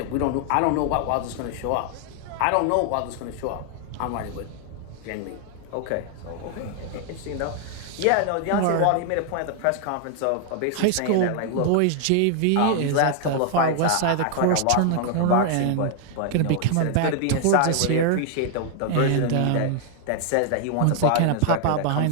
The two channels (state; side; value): different; both; correlation 0.00